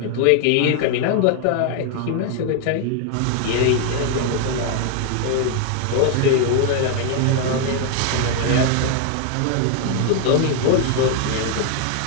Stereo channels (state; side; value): different; both; correlation 0.01